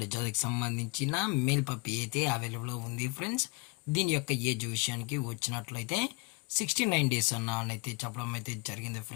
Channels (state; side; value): quieter; right; 27.9 dB